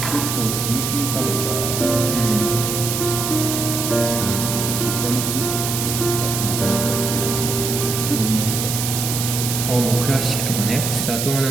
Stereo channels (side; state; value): right; noise; hiss, 2 dB below the sound